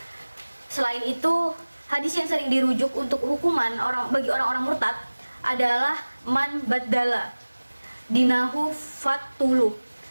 Selain itu, hadis yang sering dirujuk untuk hukuman bagi orang-orang murtad adalah man baddala dinahu fatuluh.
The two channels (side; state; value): both; inverted; correlation -1.00